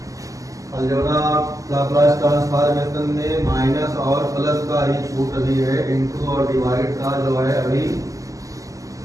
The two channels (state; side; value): late; left; 0.16 ms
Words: अलजेब्रा लाप्लास ट्रांसफॉर्मेशन में माइनस और प्लस का ही छूट अभी है, इंटू और डिवाइड का जो है अभी